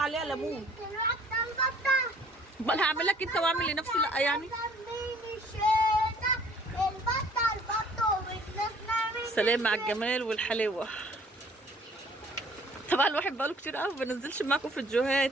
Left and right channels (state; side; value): normal; both; correlation 0.56